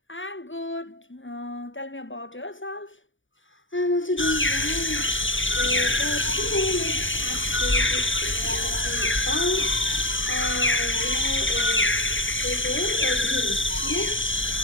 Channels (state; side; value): late; right; 0.56 ms